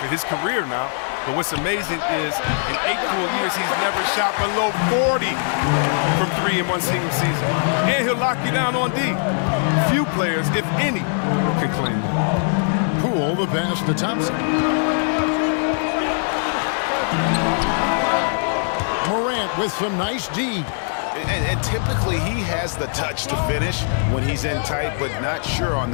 his career now. But what's amazing is in 8 full years, he's never shot below 40 from 3 in one single season. And he'll lock you down on D. Few players, if any, can claim that. Poole the pass to Thompson. Morant with some nice D. And typically he has the touch to finish when he's in tight, but not sure on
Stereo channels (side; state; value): right; silent; 65 dB below the other